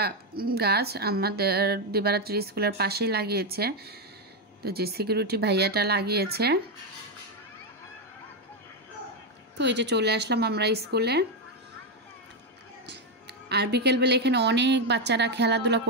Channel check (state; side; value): normal; both; correlation 0.06